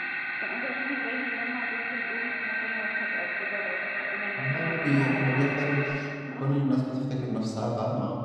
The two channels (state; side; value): identical; both; correlation 1.00